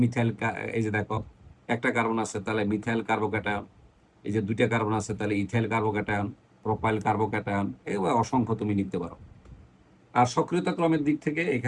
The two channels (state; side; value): identical; both; correlation 1.00